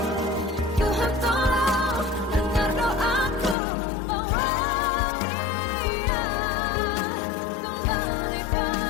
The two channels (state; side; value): drops out; right; at 3.6 s